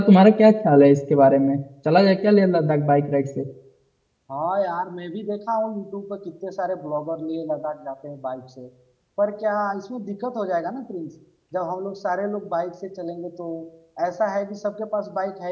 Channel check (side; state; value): both; identical; correlation 1.00